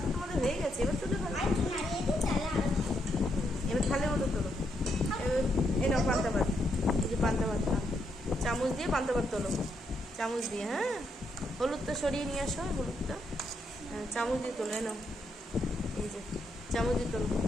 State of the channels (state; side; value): normal; both; correlation 0.78